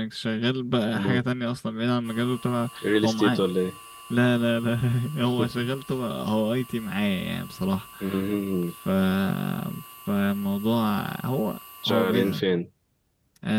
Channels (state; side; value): identical; both; correlation 1.00